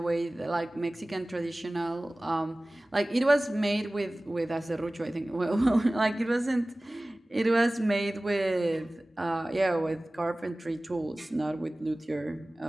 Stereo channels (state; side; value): normal; both; correlation 0.98